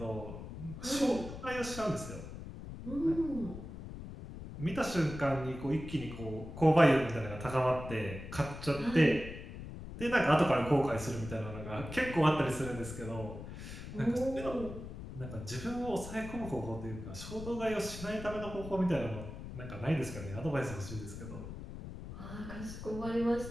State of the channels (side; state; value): left; noise; rumble, 10 dB below the sound